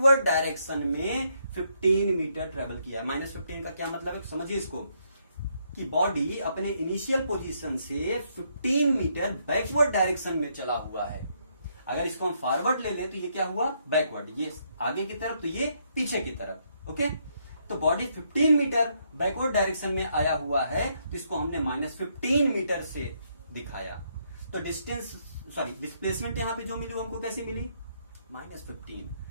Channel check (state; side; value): inverted; both; correlation -0.74